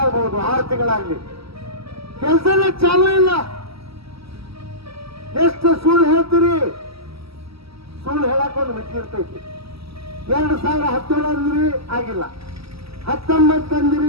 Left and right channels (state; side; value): late; left; 0.76 ms